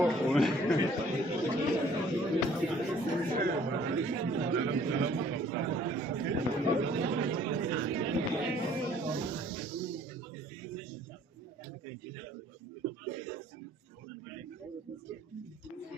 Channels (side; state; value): both; normal; correlation 0.58